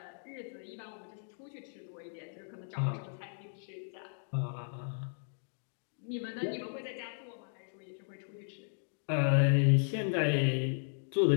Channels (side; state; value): right; silent; digital silence